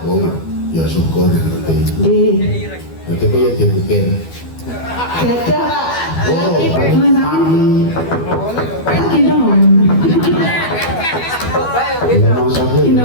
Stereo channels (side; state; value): right; late; 12 ms